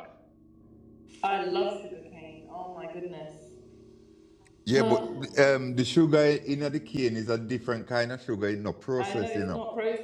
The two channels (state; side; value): identical; both; correlation 1.00